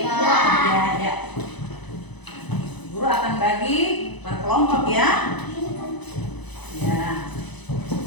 ya. Guru akan bagi per kelompok ya.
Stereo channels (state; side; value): late; right; 1.0 ms